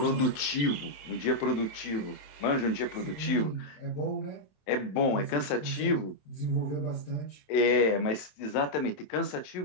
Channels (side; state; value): right; late; 27 ms